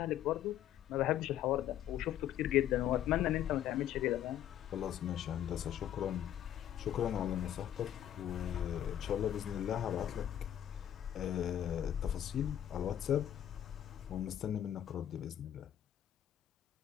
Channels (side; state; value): right; quieter; 11.0 dB